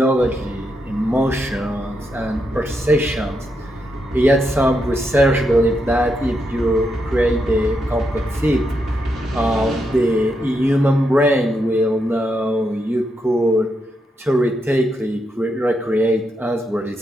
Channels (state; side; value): normal; both; correlation 0.82